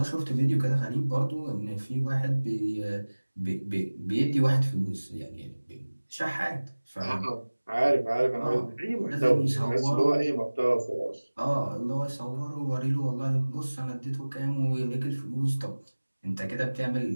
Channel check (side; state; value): both; inverted; correlation -1.00